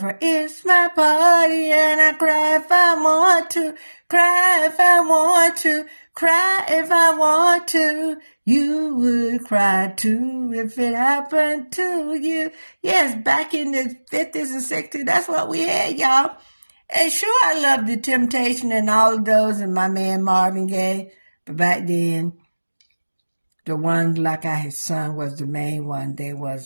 her. It's my party and I cry if I want to, cry if I want to, cry if I want to. You would cry too if it happened to you. Yes, back in the 50s and 60s, that's what we had, y'all. And sure, I loved The Temptation and all of those and my man Marvin Gaye. But back then, the ones like I had sung was the main one. They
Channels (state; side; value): inverted; both; correlation -1.00